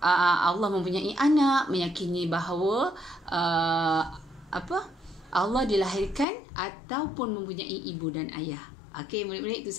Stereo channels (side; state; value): right; drops out; at 6.2 s